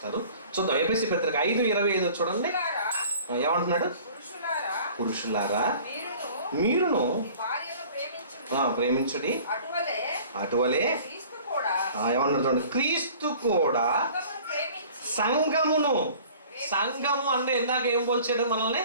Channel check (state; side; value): inverted; both; correlation -0.48